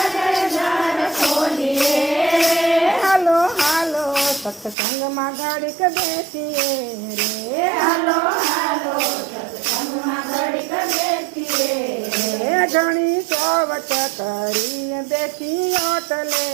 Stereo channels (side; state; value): left; drops out; at 4.8 s